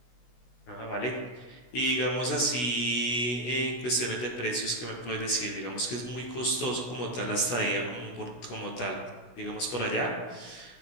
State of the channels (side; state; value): right; late; 16 ms